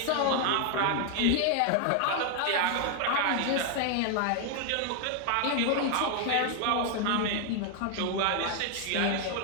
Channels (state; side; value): different; both; correlation 0.00